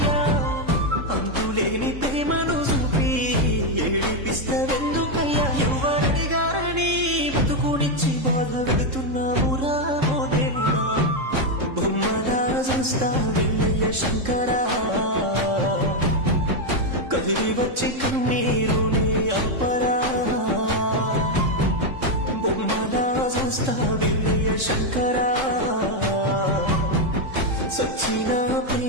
అంతులేని ప్రేమను చూపి ఏడిపిస్తవెందుకయ్యా? ఎవరడిగారని బతుకునిచ్చి బాధ పెడుతున్నావురా ఓ దేవుడా. బొమ్మలా చూస్తా వెళ్ళయ్య శంకరా, కదిలి వచ్చి కన్నీరునే ఆపరా. బొమ్మలా చూస్తా వెళ్ళయ్య శంకరా, సచ్చిన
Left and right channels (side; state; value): left; late; 3.7 ms